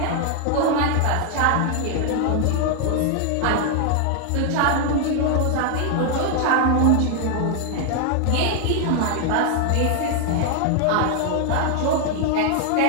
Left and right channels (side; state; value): both; different; correlation 0.00